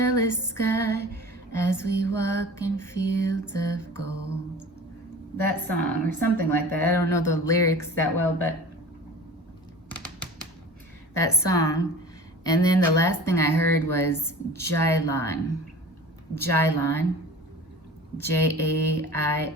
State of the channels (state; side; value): normal; both; correlation 0.39